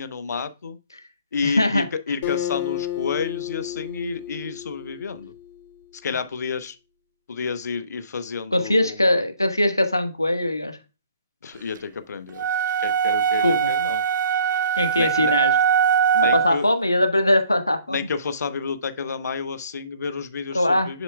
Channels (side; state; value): both; inverted; correlation -0.60